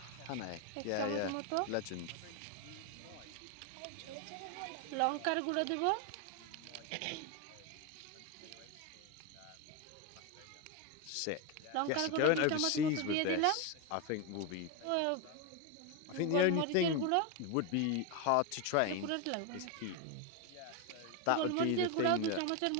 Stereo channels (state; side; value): different; both; correlation 0.02